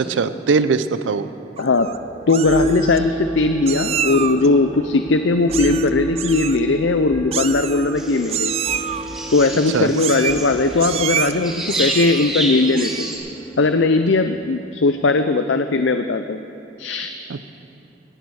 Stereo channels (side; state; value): both; normal; correlation 0.17